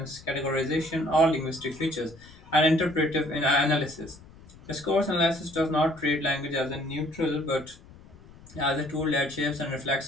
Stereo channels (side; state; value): left; noise; rumble, 22 dB below the sound